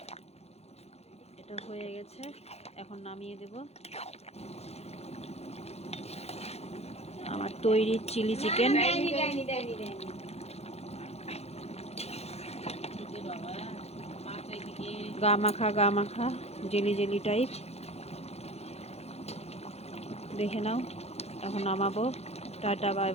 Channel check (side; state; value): right; late; 0.30 ms